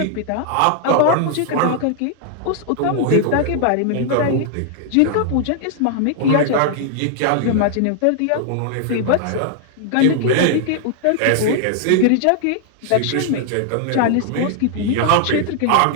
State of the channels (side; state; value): both; different; correlation 0.00